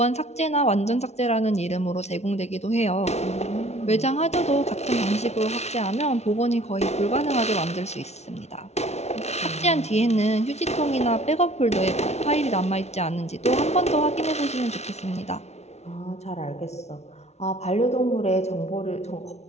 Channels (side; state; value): right; late; 0.32 ms